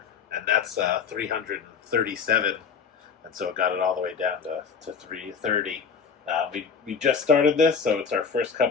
and that's 337, and so it got it all the way down to 330. We just started this, so it's our first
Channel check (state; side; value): quieter; right; 6.0 dB